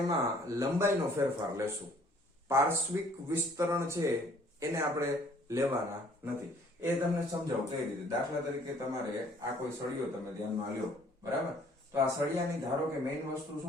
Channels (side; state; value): both; normal; correlation 0.58